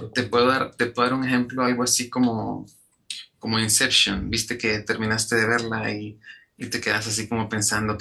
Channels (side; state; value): both; identical; correlation 1.00